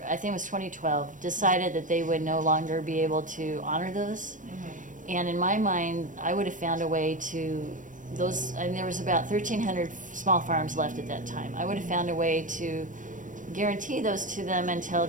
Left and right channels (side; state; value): left; late; 0.37 ms